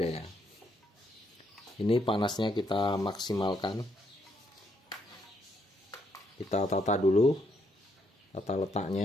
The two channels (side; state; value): both; normal; correlation 0.75